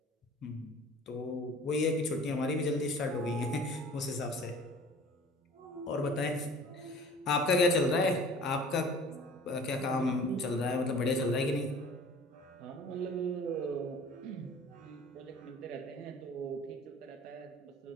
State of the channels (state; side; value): normal; both; correlation 0.46